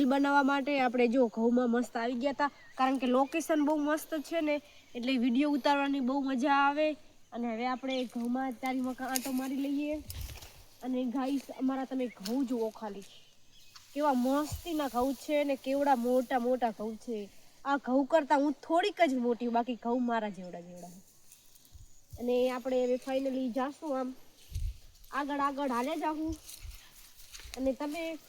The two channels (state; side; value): identical; both; correlation 1.00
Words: બનાવવા માટે આપણે જો ઘઉંમાં મસ્ત આવી ગયા હતા. કારણ કે લોકેશન બહુ મસ્ત છે ને, એટલે વિડીયો ઉતારવાની બહુ મજા આવે. અને હવે આપણે ઘઉંમાં ચારી મકા આટો મારી લઈએ. અને ગાઈસ અમારા તમે ઘઉં જુઓ ખાલી, કેવા મસ્તીના ઘઉં છે ને કેવડા મોટા મોટા ઘઉં છે. આ ઘઉં કરતાં હું થોડીક જ મોટી, બાકી ઘઉં મારા જેવડા જેવડા. અને આપણે હવે ફાઇનલી જાશું આમ આગળ આગળ હાલે જાઉં, અને તમે